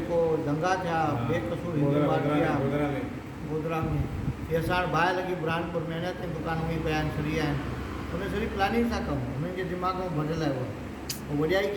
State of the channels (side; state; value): both; identical; correlation 1.00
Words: दंगा थिया बेकसूर गोधरा में, इहे असां वटि बाहि लॻी बुरहानपुर में अञा ताईं दुकानूं ई पिया आहिनि, सड़ी आहिनि। उन सॼी प्लानिंग सां कमु हुननि जे दिमाग़ में भरियल आहे। उहो वॾियाई